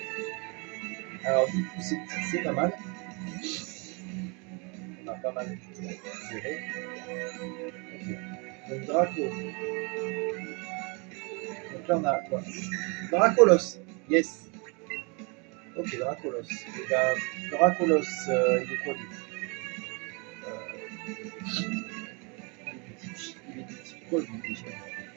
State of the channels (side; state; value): left; quieter; 31.9 dB